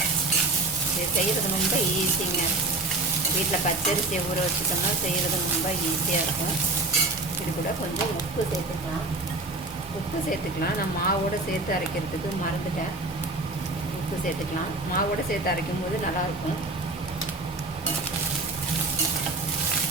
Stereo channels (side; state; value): left; quieter; 3.0 dB